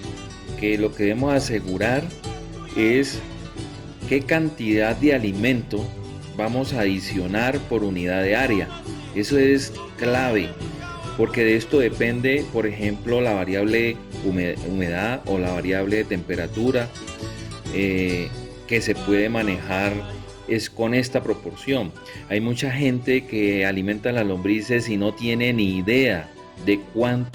que lo que debemos asegurar es qué cantidad de alimento vamos a adicionar por unidad de área. Eso es clave, porque de esto depende, por ejemplo, la variable humedad o la variable de temperatura que se puede manejar es con esta proporción. Hay mucha gente que alimenta las lombrices y no tiene ni idea de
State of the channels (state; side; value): identical; both; correlation 1.00